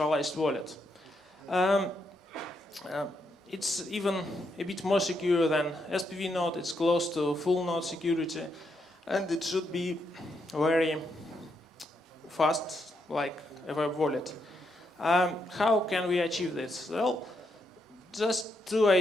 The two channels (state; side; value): normal; both; correlation 0.79